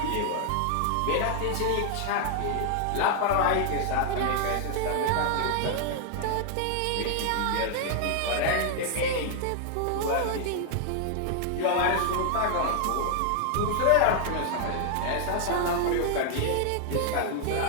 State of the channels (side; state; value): both; different; correlation 0.00